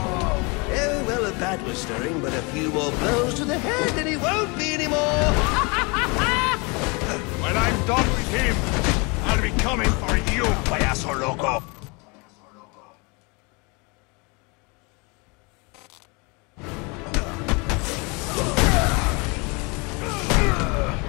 well, a bat was stirring, but a few more blows to the head and he won't be anymore. When I'm done with him, I'll be coming for you, payaso loco.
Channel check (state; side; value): quieter; right; 29.3 dB